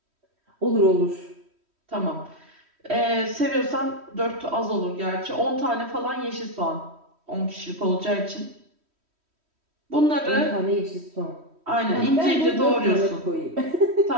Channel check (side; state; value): left; late; 3.1 ms